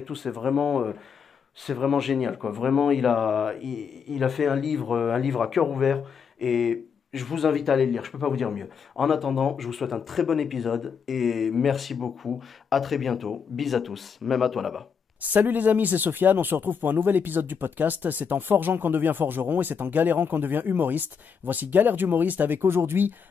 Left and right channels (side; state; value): right; quieter; 6.5 dB